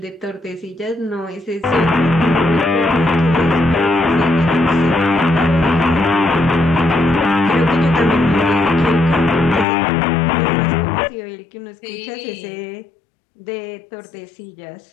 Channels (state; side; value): drops out; right; at 9.7 s